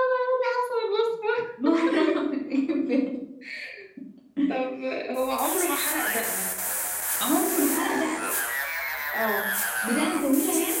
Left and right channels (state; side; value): identical; both; correlation 1.00